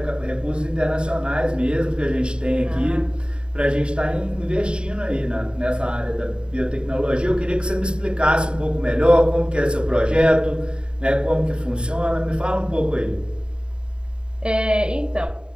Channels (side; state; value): left; late; 0.051 ms